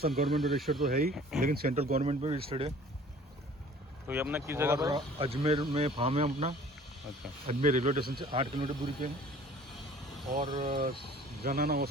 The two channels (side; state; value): both; normal; correlation 0.49